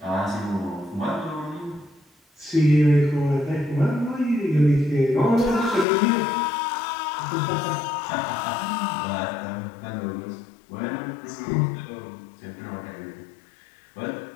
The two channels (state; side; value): drops out; right; at 5.9 s